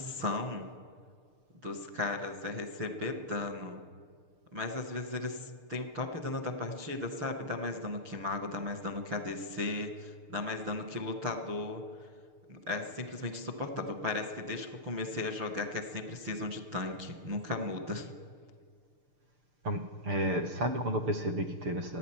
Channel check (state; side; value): late; left; 6.7 ms